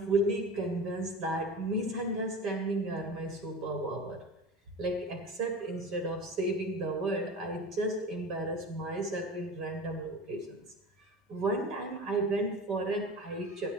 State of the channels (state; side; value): normal; both; correlation 0.33